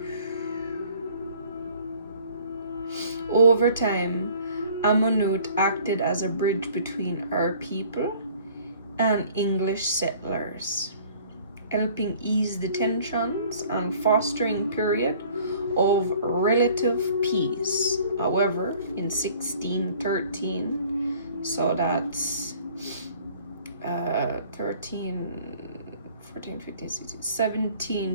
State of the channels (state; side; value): inverted; both; correlation -0.53